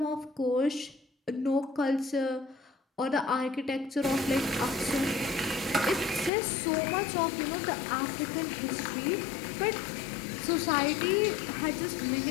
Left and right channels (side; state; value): right; drops out; at 6.3 s